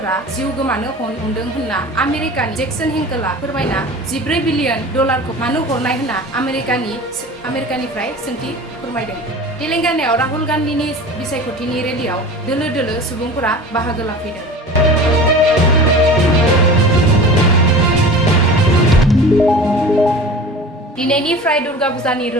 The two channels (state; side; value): normal; both; correlation 0.37